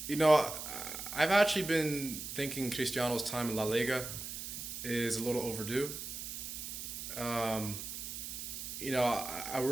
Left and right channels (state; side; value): noise; right; hiss, 7 dB below the sound